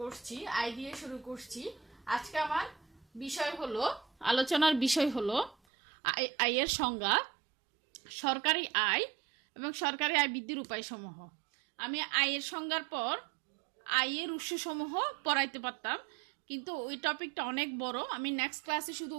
করছি, আয় দিয়ে শুরু করছি। আজকে আমার বিষয় হলো, আলোচনার বিষয় হলো আয়ের সংজ্ঞা, সরকারি আয় এবং সরকারি আয় বৃদ্ধির উপায়সমূহ। আমি আয়ের সংজ্ঞার পর আয়ের উৎসসমূহ পড়াইতে পারতাম, কিন্তু ওই টপিকটা অনেক বড়। আমি নেক্সট ক্লাসে শুধু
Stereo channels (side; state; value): left; drops out; at 5.6 s